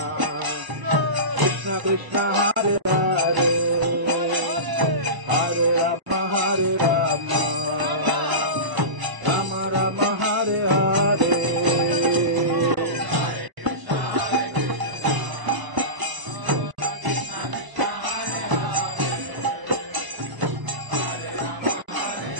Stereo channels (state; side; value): late; left; 1.0 ms